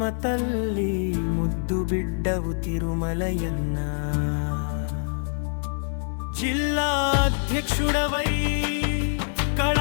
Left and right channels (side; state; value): right; silent; 59 dB below the other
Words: తల్లి, ముద్దు బిడ్డవు తిరుమలయన్న. జిల్లా అధ్యక్షుడవై